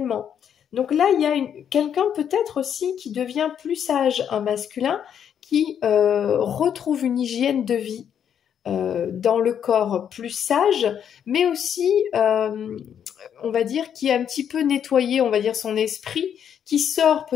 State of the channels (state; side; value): quieter; right; 8.7 dB